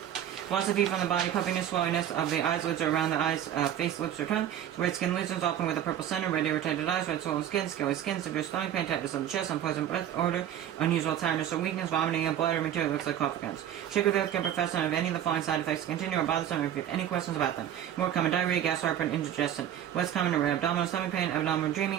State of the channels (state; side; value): quieter; left; 10.6 dB